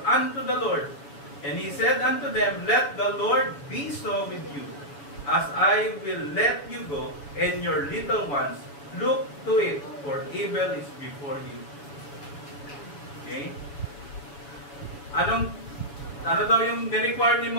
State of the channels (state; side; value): late; right; 7.1 ms